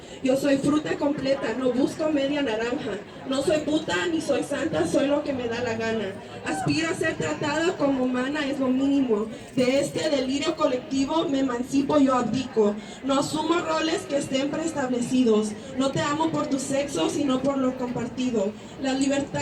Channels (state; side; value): identical; both; correlation 1.00